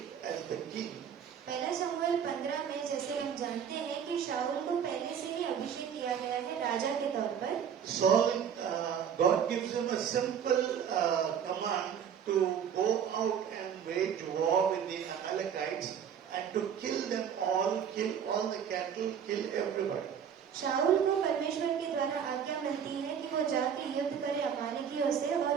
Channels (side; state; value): left; quieter; 8.1 dB